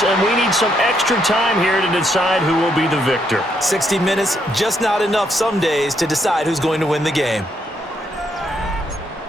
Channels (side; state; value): both; normal; correlation 0.75